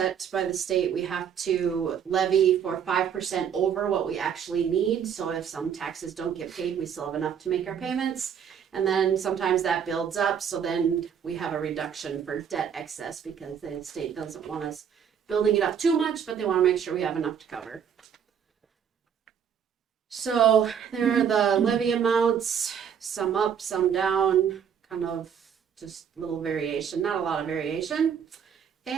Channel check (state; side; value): quieter; left; 7.9 dB